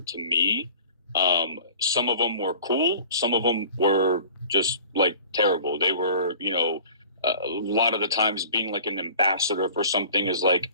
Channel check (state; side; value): inverted; both; correlation -0.45